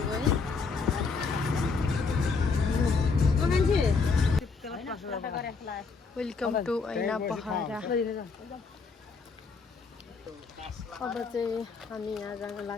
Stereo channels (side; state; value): right; quieter; 4.7 dB